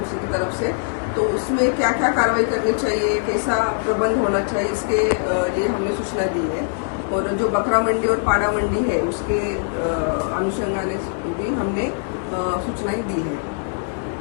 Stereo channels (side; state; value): right; silent; 61 dB below the other